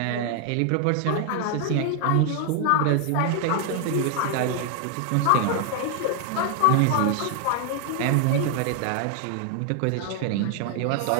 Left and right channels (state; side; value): different; both; correlation 0.00